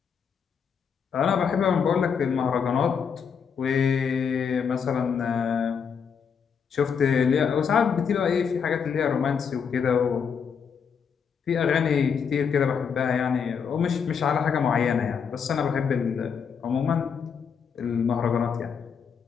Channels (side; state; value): right; quieter; 6.7 dB